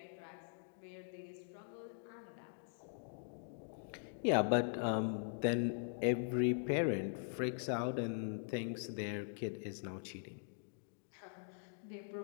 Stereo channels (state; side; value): silent; right; digital silence